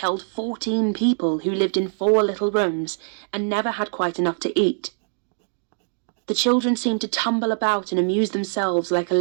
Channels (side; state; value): left; silent; digital silence